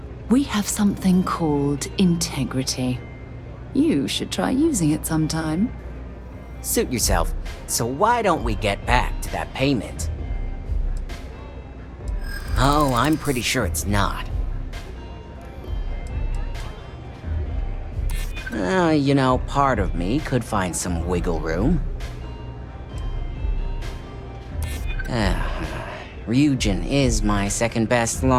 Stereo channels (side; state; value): both; identical; correlation 1.00